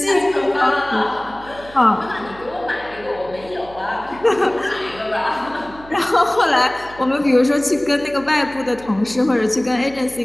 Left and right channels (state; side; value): noise; right; hum, 20 dB below the sound